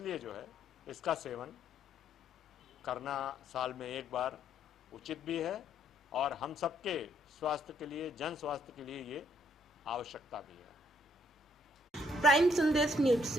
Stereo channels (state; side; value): normal; both; correlation 0.69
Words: जो है इसका सेवन करना साल में एक बार उचित भी है और हम सबके स्वास्थ्य के लिए, जन स्वास्थ्य के लिए ये आवश्यकता भी है। प्राइम संदेश न्यूज